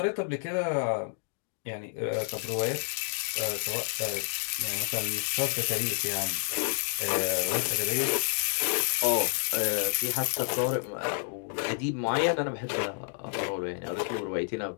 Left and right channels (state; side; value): silent; right; digital silence